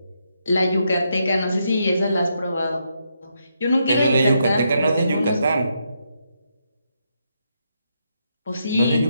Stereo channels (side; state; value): both; inverted; correlation -0.79